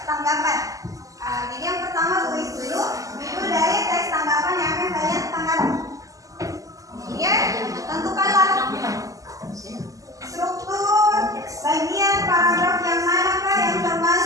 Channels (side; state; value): left; late; 0.16 ms